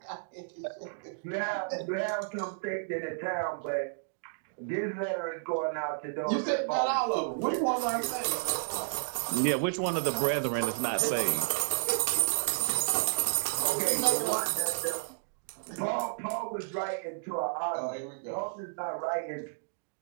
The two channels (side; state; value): left; silent; digital silence